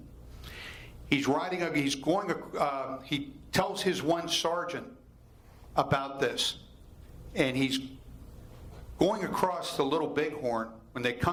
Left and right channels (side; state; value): both; identical; correlation 1.00